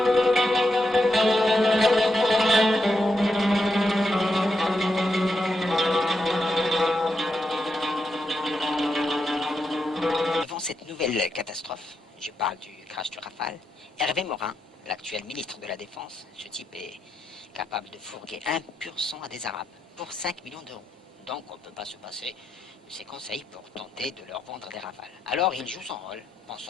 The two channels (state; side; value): normal; both; correlation 0.84